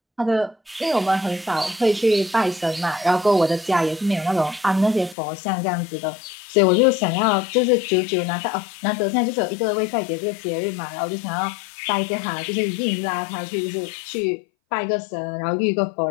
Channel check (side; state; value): right; drops out; at 5.2 s